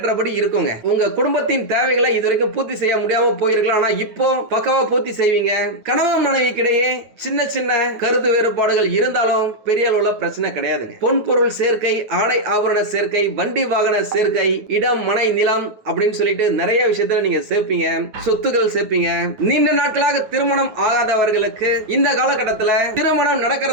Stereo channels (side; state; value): left; late; 9.4 ms